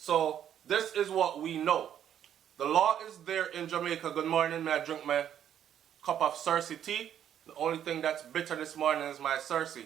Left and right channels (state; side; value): quieter; left; 9.9 dB